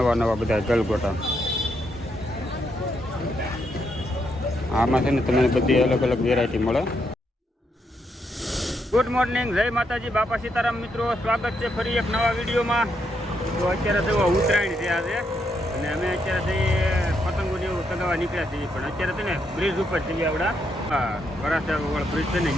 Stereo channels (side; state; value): both; normal; correlation 0.78